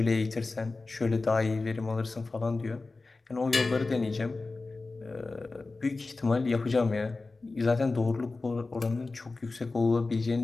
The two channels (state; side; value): quieter; right; 3.6 dB